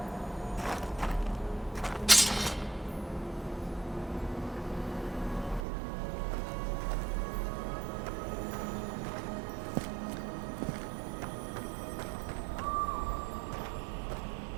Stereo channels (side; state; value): left; drops out; at 5.7 s